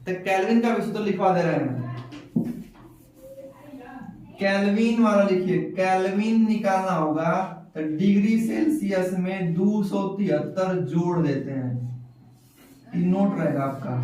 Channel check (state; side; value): identical; both; correlation 1.00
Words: तो केल्विन का भी सूत्र लिखवा दे रहे हैं। केल्विन वाला लिखिए, केल्विन निकालना होगा तो डिग्री सेल्सियस में 273 जोड़ देते हैं। ये नोट रहेगा आपका।